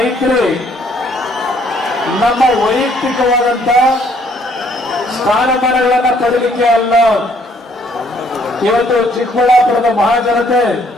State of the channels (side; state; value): both; normal; correlation 0.65